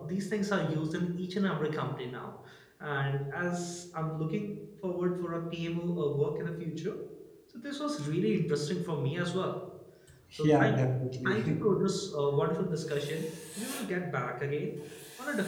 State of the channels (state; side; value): identical; both; correlation 1.00